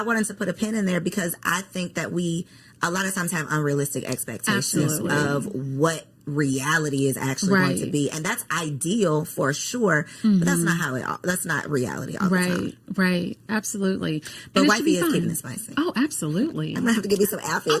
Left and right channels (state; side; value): identical; both; correlation 1.00